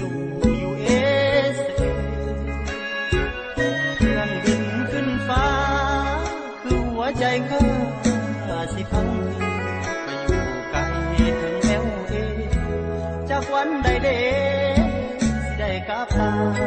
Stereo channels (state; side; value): identical; both; correlation 1.00